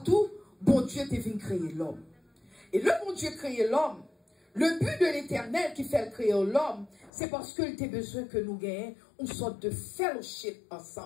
bon Dieu t'a venu créer l'homme. Et le bon Dieu créé l'homme, le but de l'Éternel qui fait créer l'homme, c'est parce qu'il a besoin que nous gagnions une sorte de fellowship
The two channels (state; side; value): drops out; right; at 7.1 s